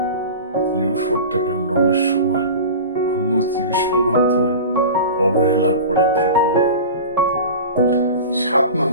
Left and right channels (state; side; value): inverted; both; correlation -0.32